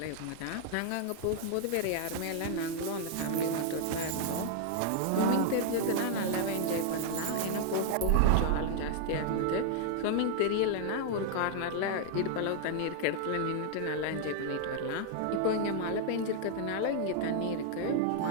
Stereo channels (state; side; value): different; both; correlation -0.01